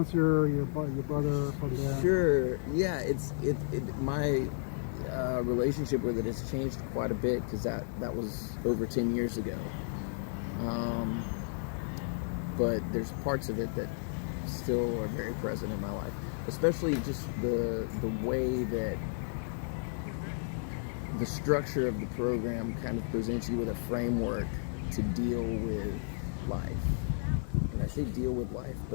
your brother from there. Sure, yeah. relationship with it has changed quite a bit, because that was over 10 years ago. But there's parts of it that still are very present in my life, especially just the way that the structure of the program kind of presents you with a framework to deal with life. And I say deal with life,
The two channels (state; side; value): silent; right; digital silence